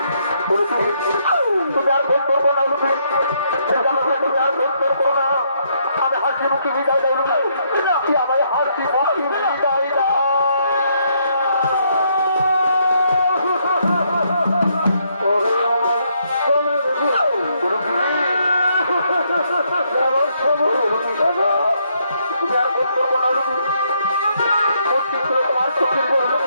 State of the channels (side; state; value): both; inverted; correlation -0.73